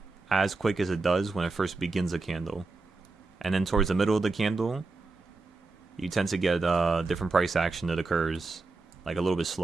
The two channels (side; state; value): left; quieter; 3.7 dB